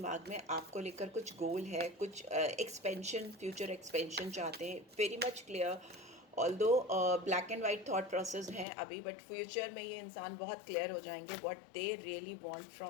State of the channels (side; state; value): right; drops out; at 8.7 s